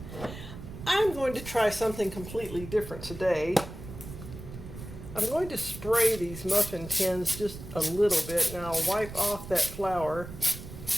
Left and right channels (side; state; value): right; noise; rumble, 12 dB below the sound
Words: I'm going to try something completely different today. I'm going to spray these muffin tins just a little bit. Now I'll wipe off that flour.